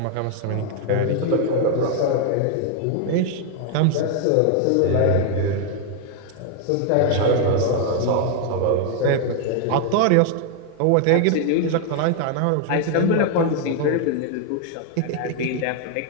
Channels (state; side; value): different; both; correlation 0.00